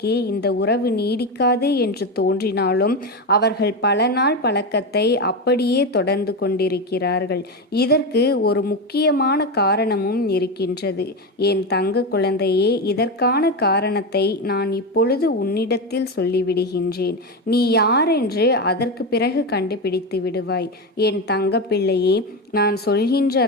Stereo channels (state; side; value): normal; both; correlation 0.15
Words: இந்த உறவு நீடிக்காது என்று தோன்றினாலும் அவர்கள் பல நாள் பழக்கத்தை அப்படியே தொடர்ந்து கொண்டிருக்கிறார்கள். இதற்கு ஒரு முக்கியமான காரணமும் இருக்கின்றது. என் தங்க குழந்தையே, இதற்கான காரணத்தை நான் இப்பொழுது உன்னிடத்தில் சொல்லிவிடுகின்றேன். நீ யாரென்று அதற்கு பிறகு கண்டுபிடித்து விடுவாய். என் தங்க பிள்ளையே, நான் சொல்கின்ற